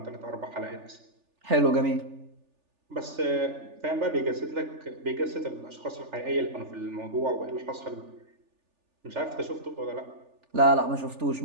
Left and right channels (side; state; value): left; late; 3.4 ms